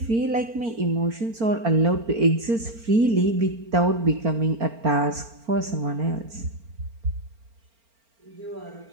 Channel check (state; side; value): late; left; 4.4 ms